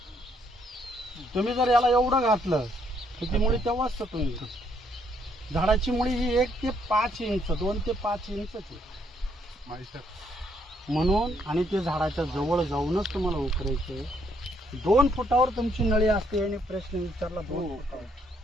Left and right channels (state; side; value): normal; both; correlation 0.70